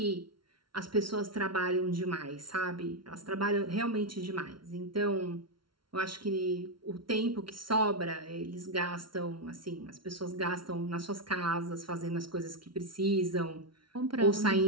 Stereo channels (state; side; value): late; left; 0.73 ms